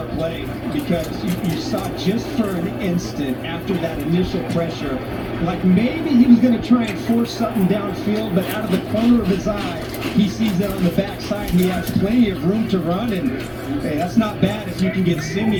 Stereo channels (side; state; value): both; identical; correlation 1.00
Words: play because you saw just for an instant after that initial pressure, like maybe he was going to try and force something downfield, but out of the corner of his eye, he sees that on the backside. He has plenty of room to run, and hey, that's not bad if you can get